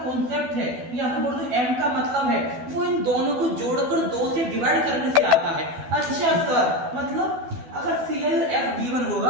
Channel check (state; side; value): late; left; 12 ms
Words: कॉन्सेप्ट है, या फिर बोल दो M का मतलब है, वो इन दोनों को जोड़कर 2 से डिवाइड करने से आता है। अच्छा सर, मतलब अगर CLF गिवन